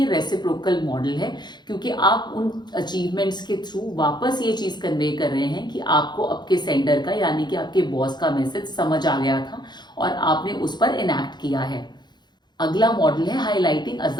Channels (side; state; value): right; late; 0.21 ms